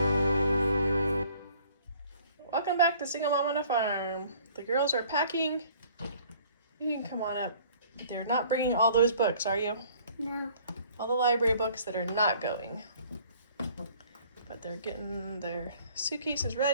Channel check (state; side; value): inverted; both; correlation -0.55